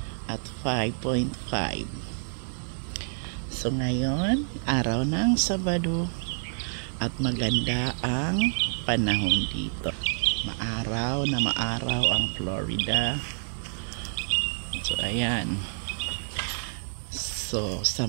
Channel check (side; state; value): left; silent; digital silence